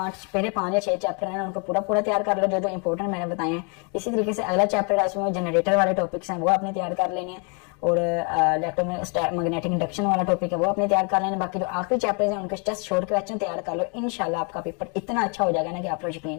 5 या 6 चैप्टर हैं उनको पूरा तैयार कर लो, जो इंपॉर्टेंट मैंने बताए हैं। इसी तरीके से अगला चैप्टर है उसमें जनरेटर वाले टॉपिक्स हैं वो आपने तैयार कर लेने हैं, और इलेक्ट्रोमैग्नेटिक इंडक्शन वाला टॉपिक है वो आपने तैयार कर लेना। बाकी जो आखिरी चैप्टर हैं उनके जस्ट शॉर्ट क्वेश्चन तैयार कर लो, इंशाल्लाह आपका पेपर इतना अच्छा हो जाएगा ना कि आप लोग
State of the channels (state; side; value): quieter; right; 36.6 dB